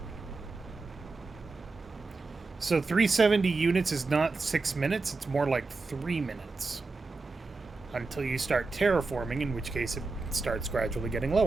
So 370 units is not 6 minutes, it's more like 3 minutes. Until you start terraforming, in which case it starts gradually getting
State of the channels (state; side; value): quieter; left; 3.8 dB